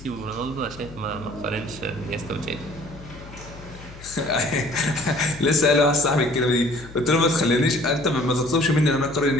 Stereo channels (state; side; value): noise; left; hum, 17 dB below the sound